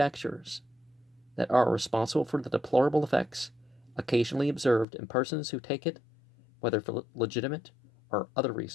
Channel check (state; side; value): drops out; right; at 4.9 s